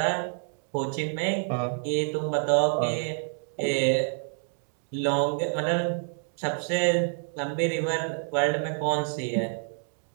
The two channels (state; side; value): silent; left; 59 dB below the other